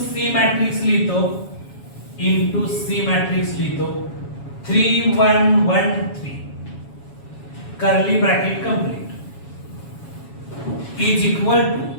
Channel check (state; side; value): late; right; 7.2 ms